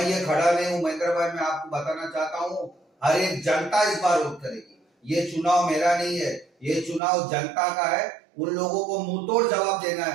ये खड़ा नहीं हूँ। महेंद्र भाई, मैं आपको बताना चाहता हूँ, हर एक जनता इस बार वोट करेगी। ये चुनाव मेरा नहीं है, ये चुनाव जनता का है। उन लोगों को मुंहतोड़ जवाब देना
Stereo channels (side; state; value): left; drops out; at 7.0 s